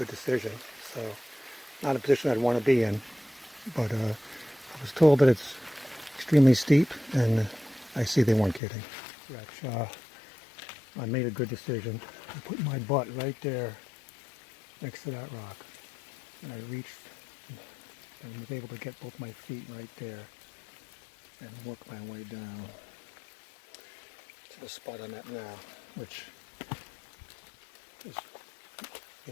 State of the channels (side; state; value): right; drops out; at 8.6 s